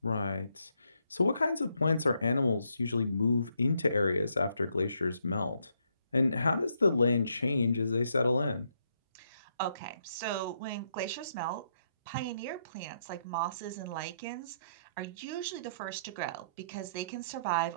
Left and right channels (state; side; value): inverted; both; correlation -0.75